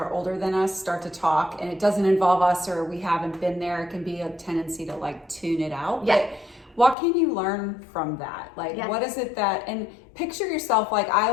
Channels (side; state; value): right; drops out; at 7.0 s